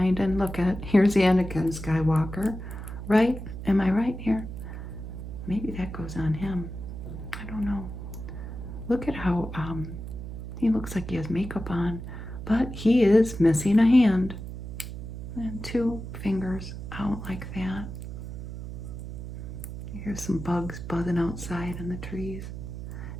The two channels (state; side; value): noise; right; hum, 9 dB below the sound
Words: And look at, here's Anakin Skywalker, right? Am I right here? Maybe that goes on him. I don't know. Look at how he looks like he has makeup on, but he is missing a hand and 2 fingers out like that. Here's some bugs buzzing outside in the trees